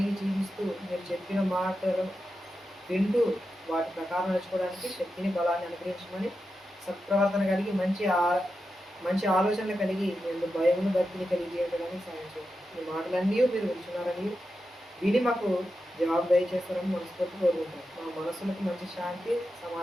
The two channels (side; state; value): both; normal; correlation 0.89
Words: జీవిస్తూ మీరు చెప్పిన మాటలు వింటూ వాటి ప్రకారం నడుచుకోవడానికి శక్తిని బలాన్ని అనుగ్రహించమని, సత్ప్రవర్తన కలిగి మంచి ఆలోచనలు కలిగి మేము భయమును భక్తిని కలిగి జీవించడానికి సాయం చేయండి. ఈ మాటలన్నీ మీరు వింటున్నారని విని మాకు జవాబు దయచేస్తారని మనస్ఫూర్తి కోరుకుంటాం. మా మనసులకు మంచి శాంతి